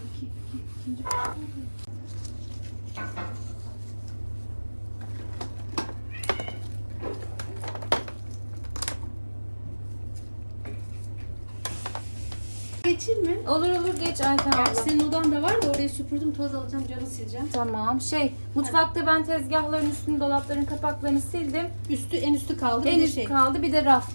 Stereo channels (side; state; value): both; inverted; correlation -1.00